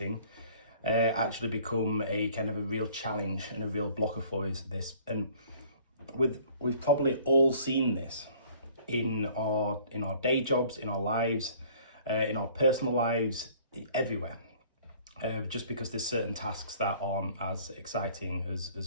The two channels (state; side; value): inverted; both; correlation -0.54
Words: actually become a kind of a real challenge and a real blocker for us. And we've probably all seen this in our day jobs, in our lives, in our personal lives, everywhere. Just because there's certain tasks that aren't as exciting